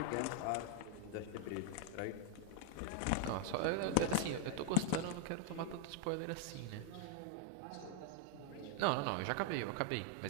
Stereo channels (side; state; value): both; different; correlation 0.00